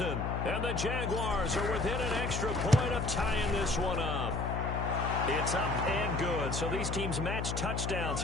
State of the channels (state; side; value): noise; left; hum, 2 dB below the sound